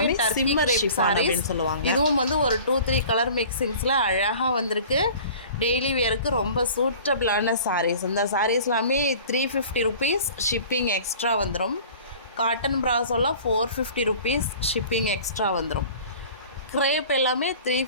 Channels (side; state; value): both; inverted; correlation -0.44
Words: சிம்மர் ஷிஃபான் அப்படின்னு சொல்லுவாங்க. இதுவும் வந்து ஒரு 2-3 கலர் மிக்சிங்ஸில் அழகாக வந்திருக்கு. டெய்லி வியருக்கு ரொம்ப சூட்டபிளான சாரீஸ். இந்த சாரீஸ் எல்லாமே 350 ருபீஸ் ஷிப்பிங் எக்ஸ்ட்ரா வந்துடும். காட்டன் ப்ராஸோலாம் 450 ருபீஸ் ஷிப்பிங் எக்ஸ்ட்ரா வந்துடும். க்ரேப் எல்லாமே